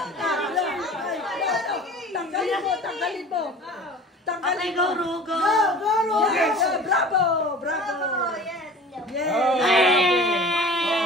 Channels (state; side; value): normal; both; correlation 0.41